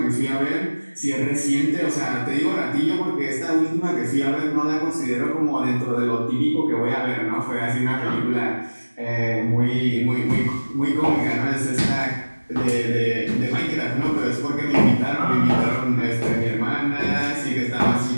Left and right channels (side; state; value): both; inverted; correlation -1.00